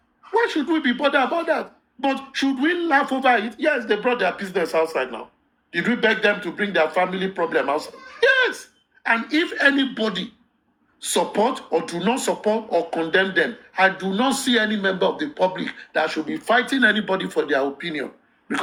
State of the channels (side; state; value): both; identical; correlation 1.00